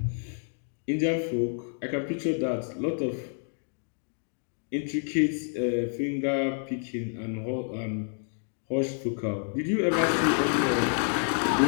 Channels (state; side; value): silent; right; 59 dB below the other